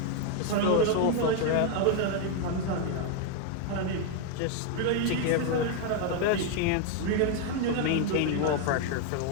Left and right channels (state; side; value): different; both; correlation 0.01